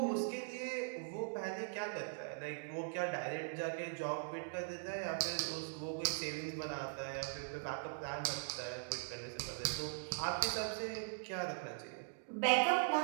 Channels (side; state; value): left; silent; digital silence